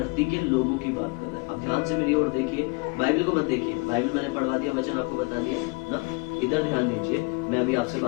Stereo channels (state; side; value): quieter; right; 30.5 dB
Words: के लोगों की बात कर रहा है। अब ध्यान से मेरी ओर देखिए, बाइबल को मत देखिए, बाइबल मैंने पढ़वा दिया, वचन आपको बता दिया ना। इधर ध्यान दीजिए, मैं अभी आपसे